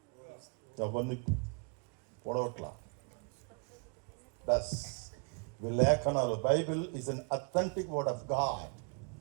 ఎవరిని పొడవట్లా. లేఖనాలు, Bible is an authentic word of God.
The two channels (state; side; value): quieter; left; 37.8 dB